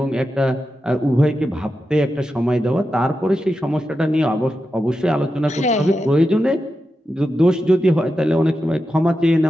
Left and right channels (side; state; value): both; normal; correlation 0.89